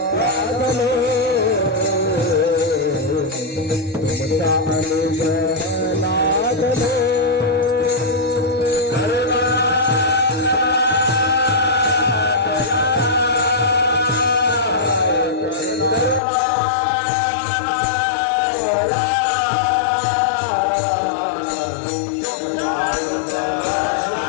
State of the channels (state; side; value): drops out; right; at 16.2 s